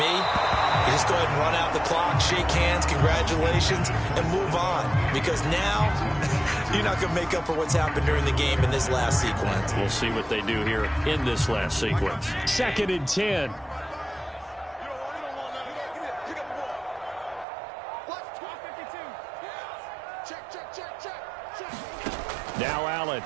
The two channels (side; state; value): left; drops out; at 17.4 s